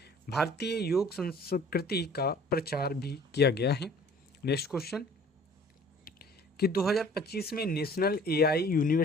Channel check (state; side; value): normal; both; correlation 0.51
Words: भारतीय योग संस्कृति का प्रचार भी किया गया है। नेक्स्ट क्वेश्चन कि 2025 में नेशनल एआई